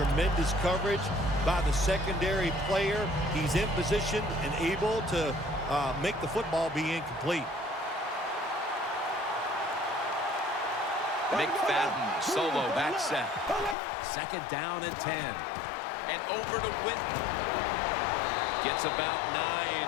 coverage by the secondary player. He's in position and able to make the football be incomplete. McFadden solo back set. 2nd down and 10. And over to Witten. Gets about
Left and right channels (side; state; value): right; drops out; at 13.8 s